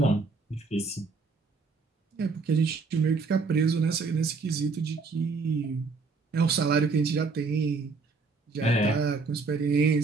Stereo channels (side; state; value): left; quieter; 4.3 dB